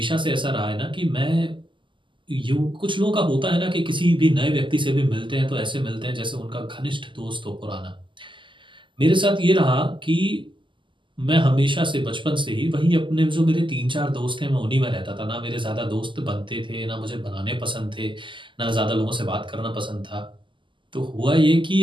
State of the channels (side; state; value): left; late; 0.24 ms